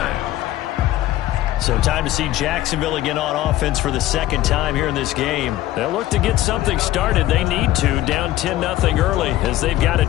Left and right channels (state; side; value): quieter; right; 14.8 dB